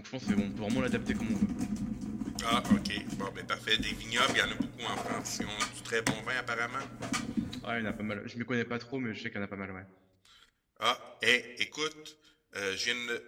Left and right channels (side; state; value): both; identical; correlation 1.00